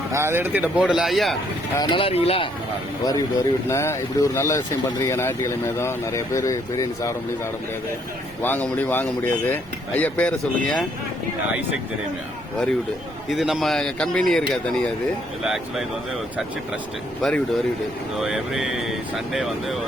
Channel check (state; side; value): noise; right; rumble, 22 dB below the sound